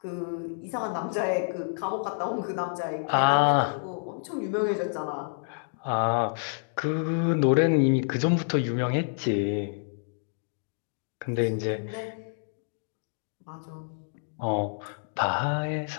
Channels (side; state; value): right; silent; digital silence